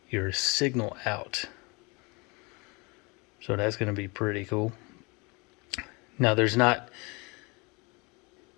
your signal out, so that's going to be pretty cool. Now there's not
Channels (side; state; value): right; quieter; 28.2 dB